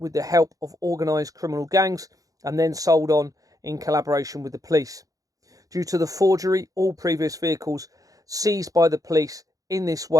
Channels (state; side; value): late; left; 0.17 ms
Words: the help of organised criminal gangs and then sold on in collaboration with the police. Due to the forgery, all previous vehicles seized by the police in this